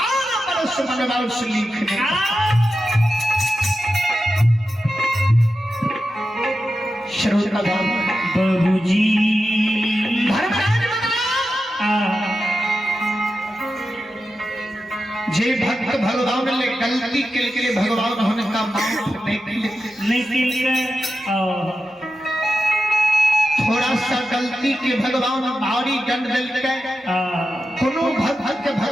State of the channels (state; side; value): normal; both; correlation 0.91